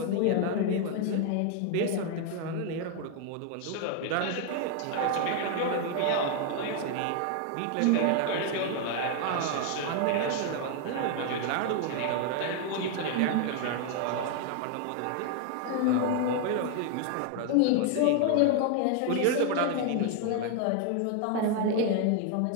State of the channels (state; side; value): different; both; correlation 0.00